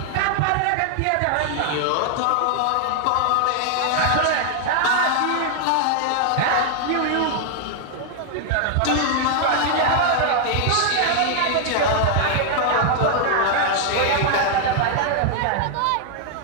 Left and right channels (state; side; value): different; both; correlation 0.00